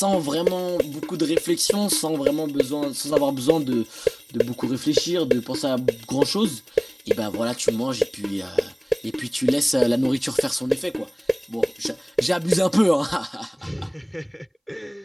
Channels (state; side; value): identical; both; correlation 1.00